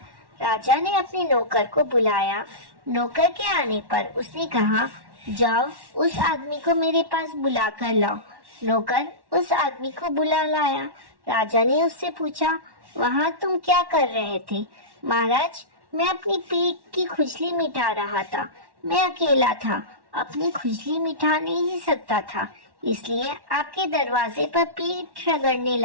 राजा ने अपने नौकर को बुलाया। नौकर के आने पर उसने कहा, जाओ उस आदमी को मेरे पास बुला कर लाओ। नौकर उस आदमी को बुला लाया। राजा ने उससे पूछा, वहाँ तुम क्या कर रहे थे? महाराज, मैं अपनी पेट की खुजली मिटा रहा था। मैं अकेला था, अपनी खुजली मिटा नहीं सकता था, इसलिए आपके दरवाजे पर पेट रगड़ने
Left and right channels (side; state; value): left; late; 1.1 ms